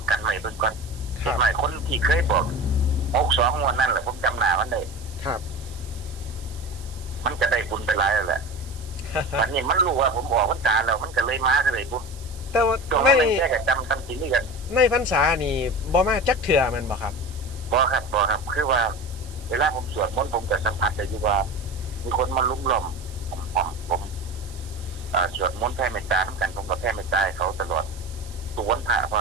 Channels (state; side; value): noise; right; hiss, 20 dB below the sound